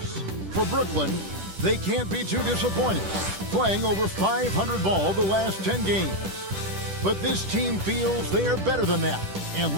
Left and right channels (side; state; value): left; late; 10 ms